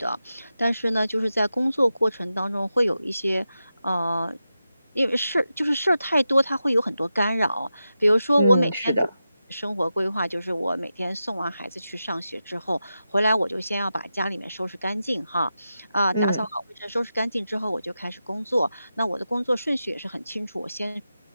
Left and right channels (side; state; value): both; inverted; correlation -0.91